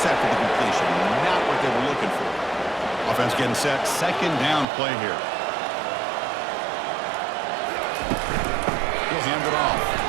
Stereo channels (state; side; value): drops out; left; at 4.7 s